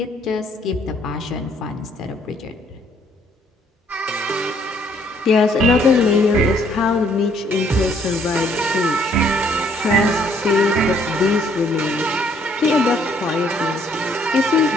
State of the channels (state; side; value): normal; both; correlation 0.65